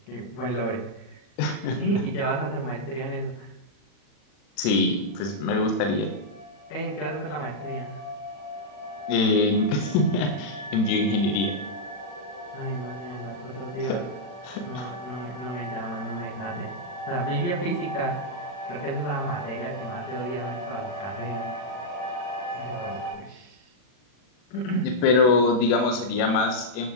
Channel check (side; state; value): right; late; 40 ms